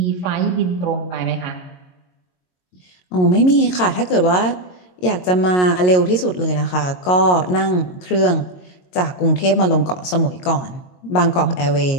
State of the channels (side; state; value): right; late; 22 ms